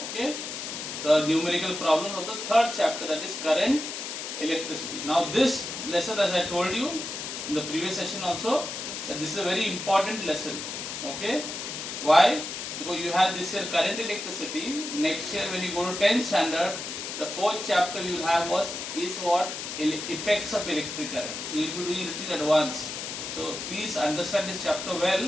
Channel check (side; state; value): left; noise; hiss, 6 dB below the sound